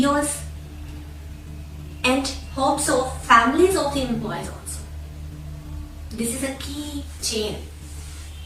and hopes of families of the employees also. This is a key chain.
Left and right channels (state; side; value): identical; both; correlation 1.00